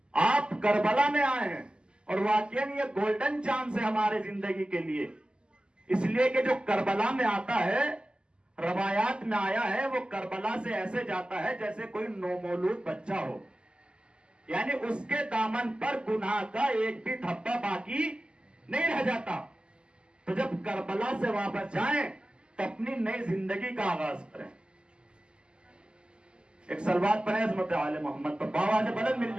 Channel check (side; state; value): left; late; 0.050 ms